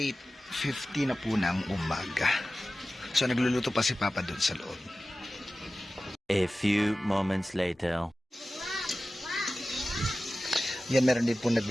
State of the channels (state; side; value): normal; both; correlation 0.95